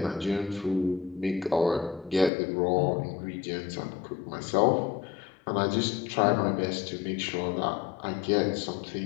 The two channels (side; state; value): right; drops out; at 2.3 s